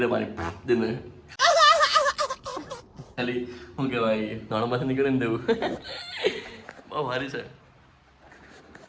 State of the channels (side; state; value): both; identical; correlation 1.00